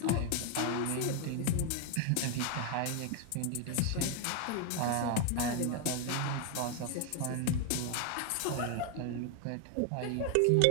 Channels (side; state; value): both; different; correlation 0.00